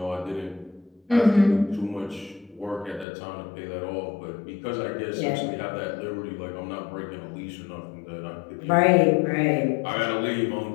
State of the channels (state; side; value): drops out; right; at 3.1 s